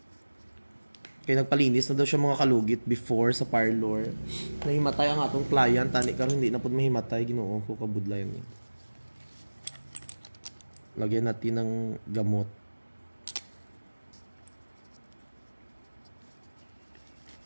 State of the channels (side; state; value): both; inverted; correlation -1.00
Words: Kaya nagpalinis na daw siya mga kalugit before sa parlor. Nahimatay ang atong client, tani karon hindi na pud mahimatay, ginoo ko kabudlayan ni. Lagyan natin ng gamot.